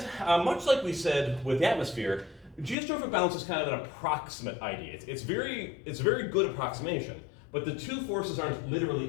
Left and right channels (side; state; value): right; drops out; at 2.8 s